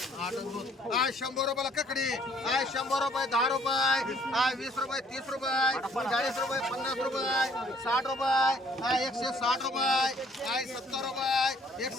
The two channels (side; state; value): both; normal; correlation 0.60